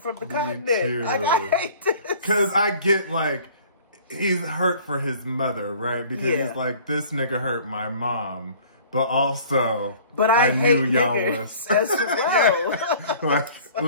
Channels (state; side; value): inverted; both; correlation -0.50